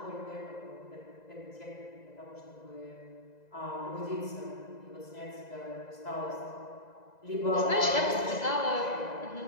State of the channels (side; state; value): right; late; 2.0 ms